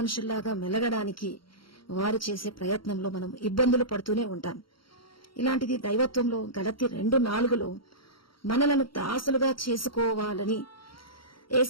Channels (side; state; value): right; late; 0.73 ms